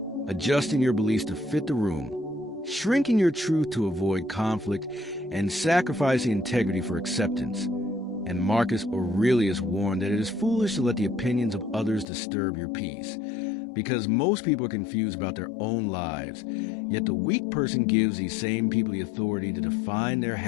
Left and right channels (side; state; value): right; drops out; at 12.1 s